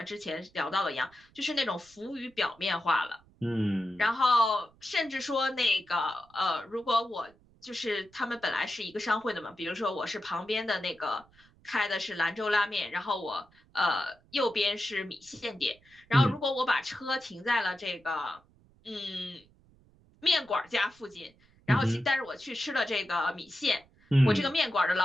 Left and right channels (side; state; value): right; noise; rumble, 30 dB below the sound